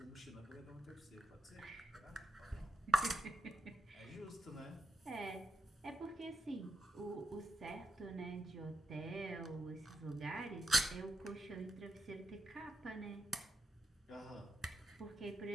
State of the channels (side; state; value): both; normal; correlation 0.82